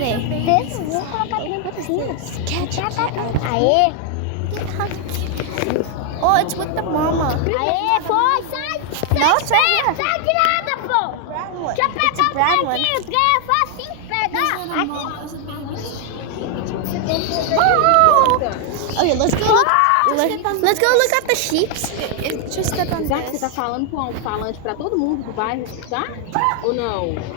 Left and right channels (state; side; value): different; both; correlation 0.00